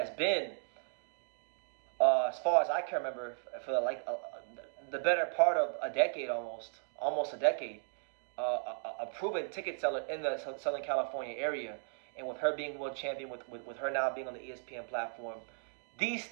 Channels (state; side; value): silent; left; digital silence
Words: been, as far as I can remember, for the better part of a decade, almost a decade, a proven ticket seller in the Southern California area, and with her being world champion, with her now being on the ESPN platform, these